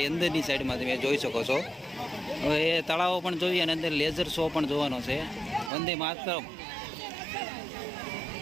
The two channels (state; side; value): drops out; left; at 5.7 s